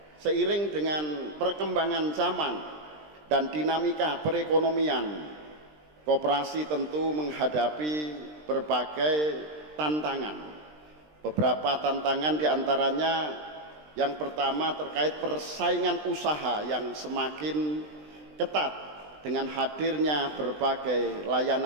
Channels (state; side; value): late; left; 20 ms